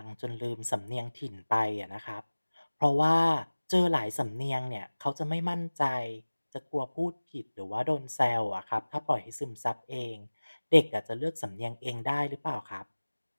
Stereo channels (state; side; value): inverted; both; correlation -1.00